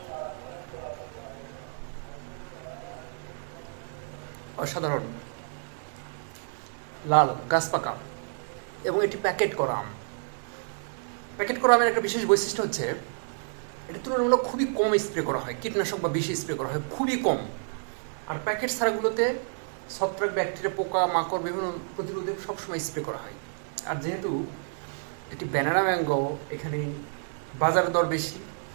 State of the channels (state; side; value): silent; left; digital silence